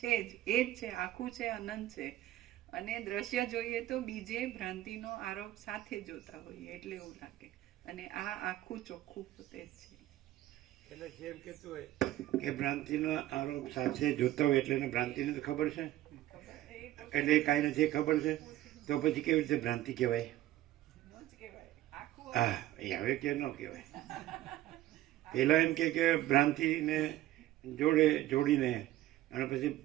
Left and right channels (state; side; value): quieter; left; 14.6 dB